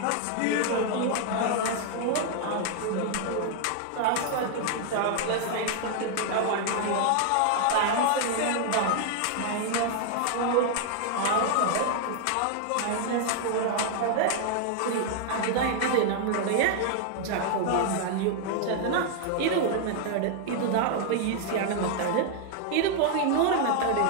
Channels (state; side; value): different; both; correlation 0.00